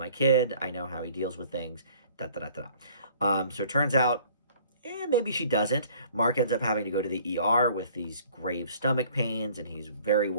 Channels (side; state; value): both; inverted; correlation -0.55